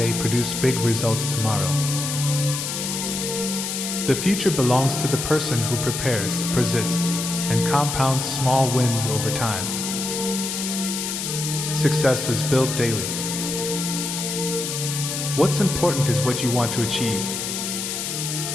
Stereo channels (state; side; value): noise; left; hiss, 3 dB below the sound